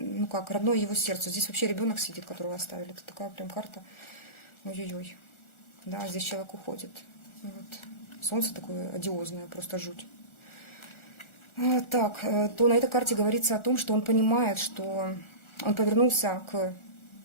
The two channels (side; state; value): right; late; 1.4 ms